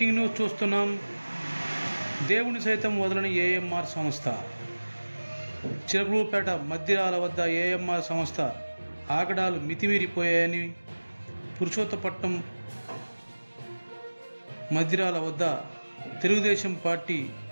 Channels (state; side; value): inverted; both; correlation -1.00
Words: news చూస్తున్నాం. దేవుని సైతం వదలని ఏఎంఆర్ సంస్థ. చిలకలూరుపేట మద్దిరాల వద్ద ఏఎంఆర్ సంస్థ ఆగడాలు మితిమీరిపోయాయని పురుషోత్తపట్నం మద్దిరాల వద్ద తెలుగుదేశం పార్టీ